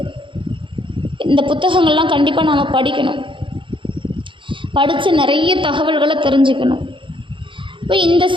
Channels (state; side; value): late; left; 0.24 ms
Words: இந்த புத்தகங்கள்லாம் கண்டிப்பாக நாம் படிக்கணும், படித்து நிறைய தகவல்களை தெரிஞ்சுக்கணும். இப்போ இந்த